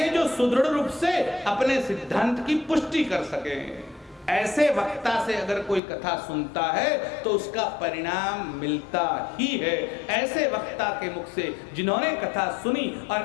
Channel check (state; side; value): drops out; right; at 5.8 s